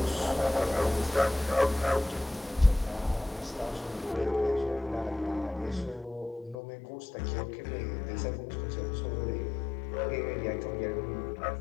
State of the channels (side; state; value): right; drops out; at 6.6 s